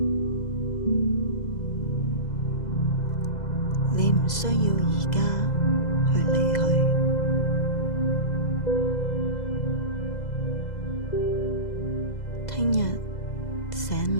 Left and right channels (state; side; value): late; right; 2.0 ms